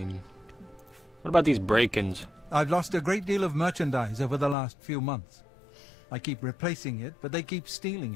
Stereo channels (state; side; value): drops out; right; at 4.5 s